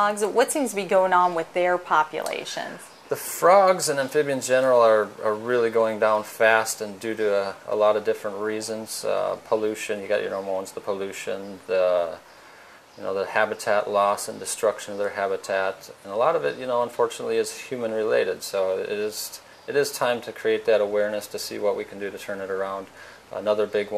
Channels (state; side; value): identical; both; correlation 1.00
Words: what seems to be going on with their populations? The frogs and amphibians in general are really going down fast, and due to a lot of different reasons. Pollution, you got your normal ones, the pollution, the habitat loss and destruction of their habitat, and a lot of it, unfortunately is human related. So it is time to create that awareness to see what we can do to turn it around. Another big